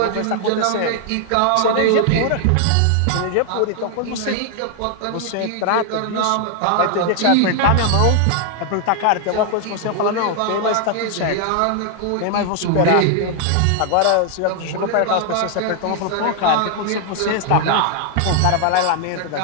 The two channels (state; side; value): different; both; correlation 0.00